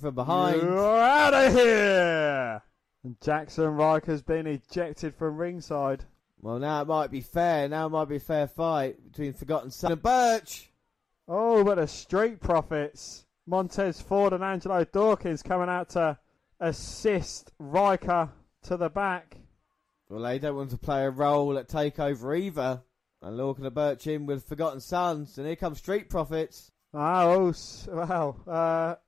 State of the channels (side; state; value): right; quieter; 5.0 dB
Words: behind. You're out of here! And Jackson Riker's been ejected from ringside. Well, now it might be fair. Now it might be a fair fight between Forgotten Son and Burch. Oh, but the Street Profits. Montez Ford and Angelo Dawkins coming out to assist Riker to the back. Well, they don't want to play a role at TakeOver either. And Lorcan and Burch in with Forgotten Sons. And here comes Street Profits.